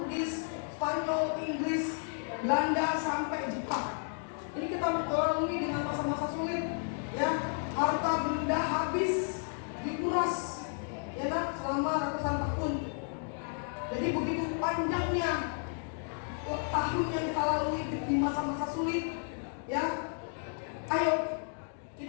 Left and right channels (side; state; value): right; silent; 56 dB below the other